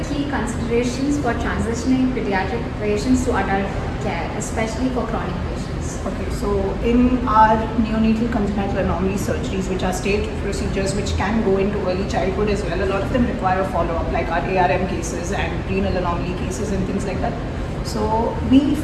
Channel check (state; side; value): identical; both; correlation 1.00